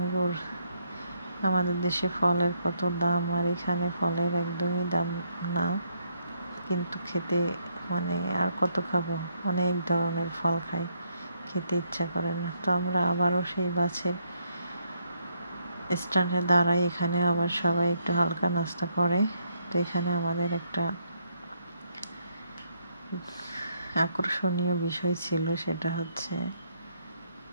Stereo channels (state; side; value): inverted; both; correlation -0.74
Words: আমাদের দেশে ফলের কত দাম, আর এখানে ফলের একদমই দাম না, কিন্তু খেতে মানে আর কত খাবো, অনেক ধরনের ফল খাই, খেতে ইচ্ছা করে না। তো আমরা আবারও সেই বাসের স্ট্যান্ডে দাঁড়াই, এখানে আবার সবাই একটু হালকা নাস্তা করে। তো এখানে আমাদের একটা আকর্ষণীয় বিষয় ছিল, সেটা হচ্ছে